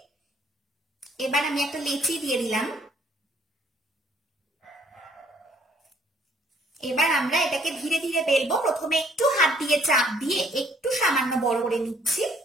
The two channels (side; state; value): both; normal; correlation 0.63